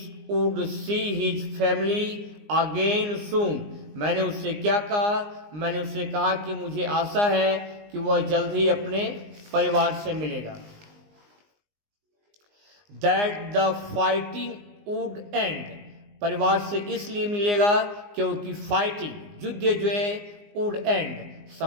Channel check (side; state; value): left; late; 19 ms